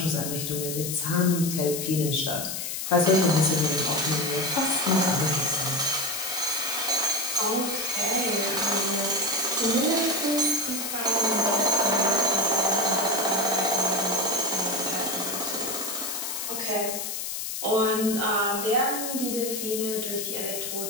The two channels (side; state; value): left; noise; hiss, 4 dB below the sound